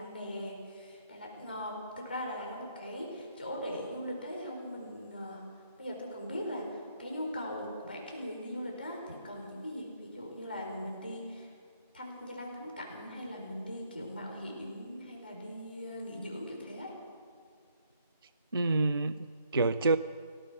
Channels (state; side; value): inverted; both; correlation -0.70